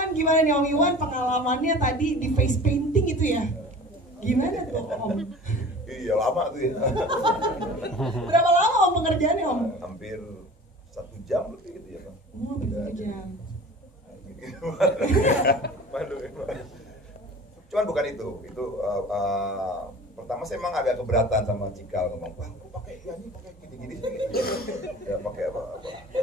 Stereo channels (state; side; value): normal; both; correlation 0.41